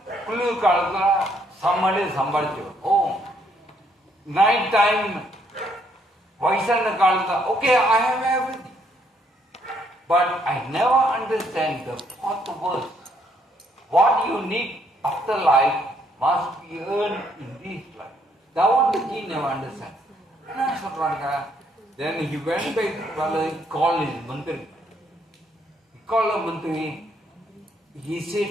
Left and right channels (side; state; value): both; normal; correlation 0.70